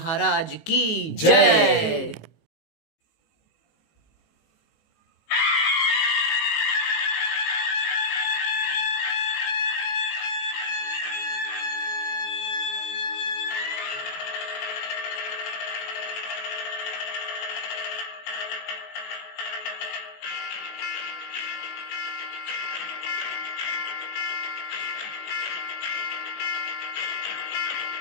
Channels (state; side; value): late; right; 19 ms